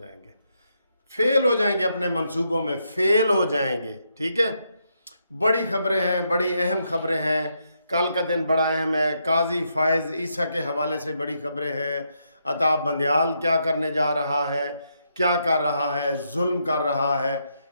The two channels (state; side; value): inverted; both; correlation -0.79